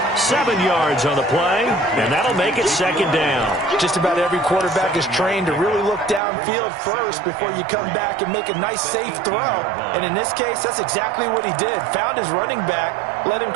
7 yards on the play, and that'll make it 2nd down. Just about every quarterback is trained to really look downfield first before you come back and make a nice, safe throw. And in this case, that's exactly what he did. Found his running back, let him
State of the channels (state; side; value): drops out; left; at 6.2 s